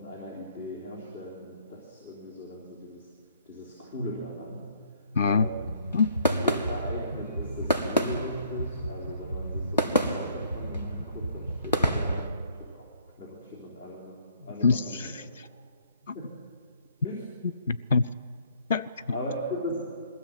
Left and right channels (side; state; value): both; inverted; correlation -0.62